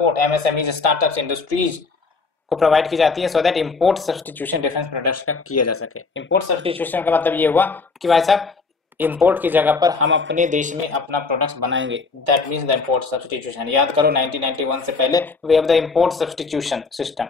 MSMEs, startups, industries को प्रोवाइड की जाती है so that import substitution defence products का किया जा सके। इंपोर्ट सब्स्टिट्यूशन का मतलब ये हुआ कि भाई साहब इंपोर्ट की जगह पर हम अपने देश में अपना प्रोडक्ट्स बनाएंगे, that means the import substitution. याद करो 1991 से पहले we have the import substitution system.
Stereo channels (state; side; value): quieter; right; 4.3 dB